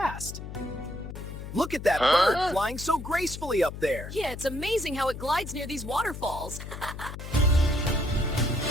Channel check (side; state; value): left; noise; hum, 9 dB below the sound